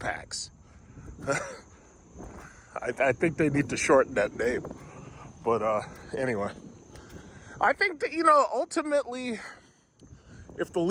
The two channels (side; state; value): both; identical; correlation 1.00